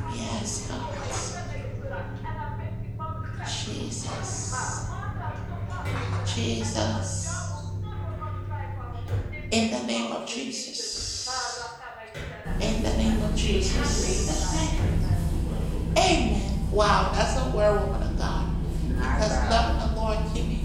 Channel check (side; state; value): both; identical; correlation 1.00